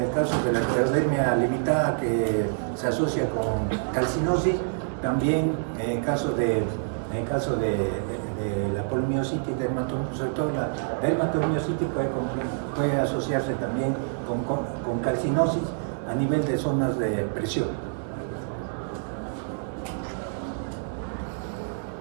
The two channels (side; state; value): left; silent; digital silence